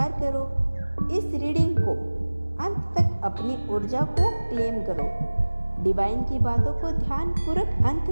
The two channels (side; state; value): both; inverted; correlation -1.00